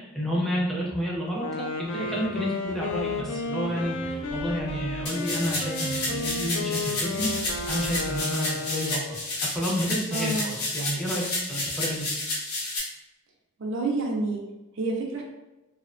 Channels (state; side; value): normal; both; correlation 0.40